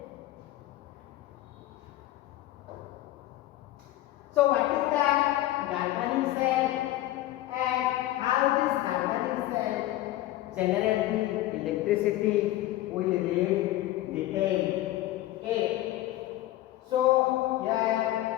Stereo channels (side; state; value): right; quieter; 15.5 dB